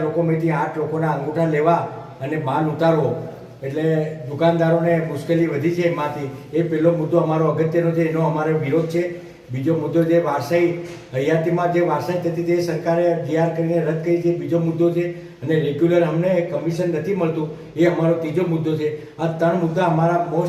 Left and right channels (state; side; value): identical; both; correlation 1.00